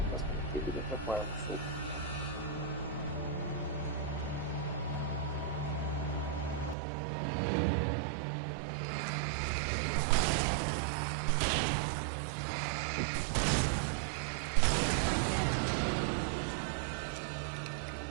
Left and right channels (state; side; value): drops out; left; at 6.8 s